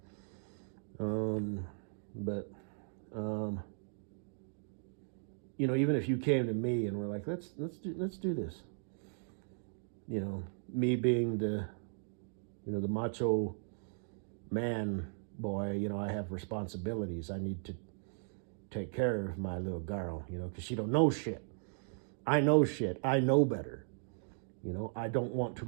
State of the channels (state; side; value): silent; left; digital silence